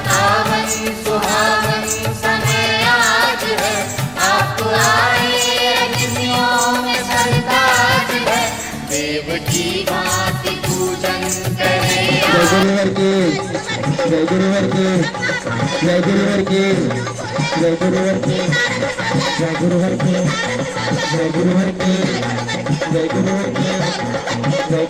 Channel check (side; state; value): right; noise; rumble, 25 dB below the sound